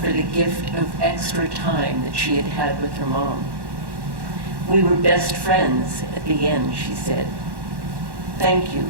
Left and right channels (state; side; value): late; left; 1.1 ms